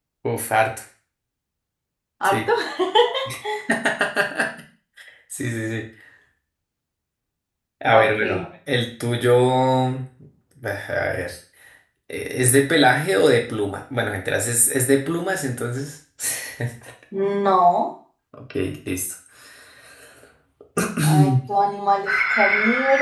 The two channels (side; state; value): both; identical; correlation 1.00